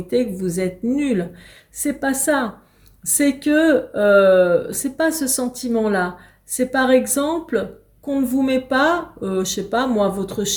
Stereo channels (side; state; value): both; identical; correlation 1.00